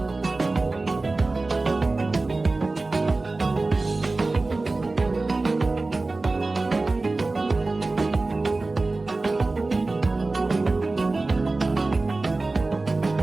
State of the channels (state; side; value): quieter; left; 3.3 dB